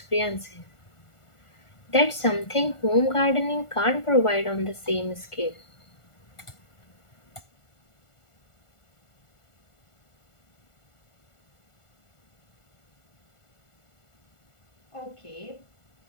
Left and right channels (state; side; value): late; right; 1.4 ms